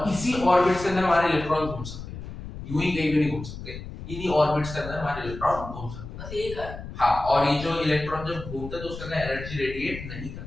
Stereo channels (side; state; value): left; noise; rumble, 10 dB below the sound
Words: इसी ऑर्बिट्स के अंदर हमारे इलेक्ट्रॉन घूम सकते हैं, यूं ही कहीं भी नहीं घूम सकते, इन्हीं ऑर्बिट्स के अंदर हमारे इलेक्ट्रॉन घूम सकते हैं। बस यही का हां, और ये जो इलेक्ट्रॉन जब घूमते हैं तो उसके अंदर एनर्जी रेडिएट नहीं